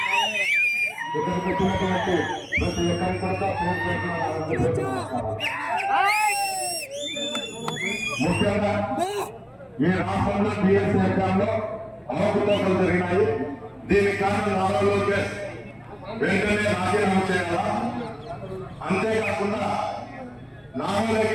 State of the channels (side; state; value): both; identical; correlation 1.00